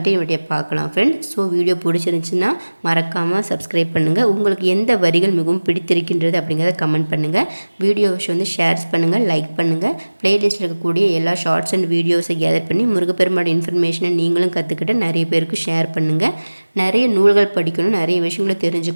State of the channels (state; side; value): inverted; both; correlation -1.00